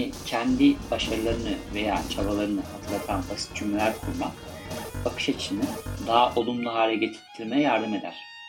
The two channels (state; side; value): identical; both; correlation 1.00